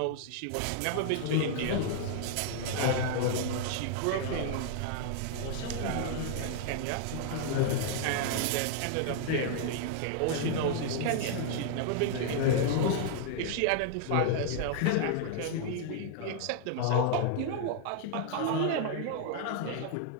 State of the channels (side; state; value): both; different; correlation 0.00